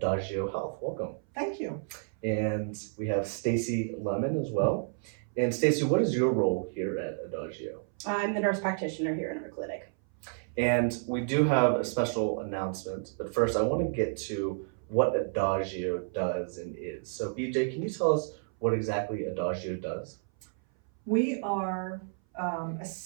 Health. Welcome. Thank you. And we have Stacy Lemon as well. And Stacy, what is your role here at Adagio? I'm the nurse practitioner here in our clinic. And we do have a special announcement, but first I want to get to what Adagio does and is. So, BJ, can you tell us what exactly Adagio does? We are a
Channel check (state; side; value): silent; left; 57 dB below the other